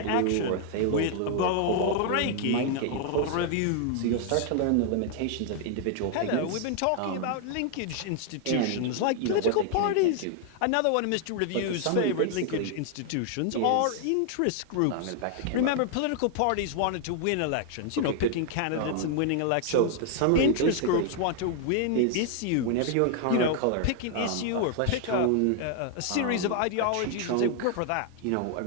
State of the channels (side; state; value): both; different; correlation 0.00